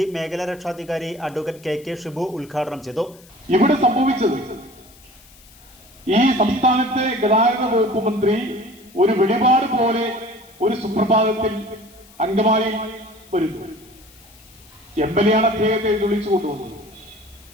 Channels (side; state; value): left; noise; hiss, 25 dB below the sound